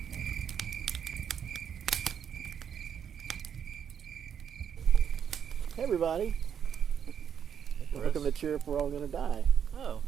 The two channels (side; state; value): left; quieter; 8.1 dB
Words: Hey everybody. Welcome to Cheer Up, We're All Gonna Die. Oh,